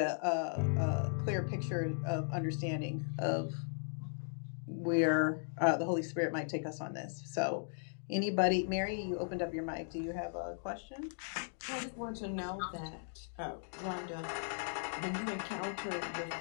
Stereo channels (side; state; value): right; silent; digital silence